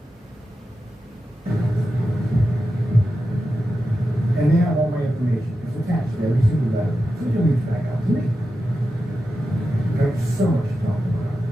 And they have all my information. It's attached to every single letter. So you'll reach back out to me. There's so much to talk about.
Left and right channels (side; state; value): both; normal; correlation 0.90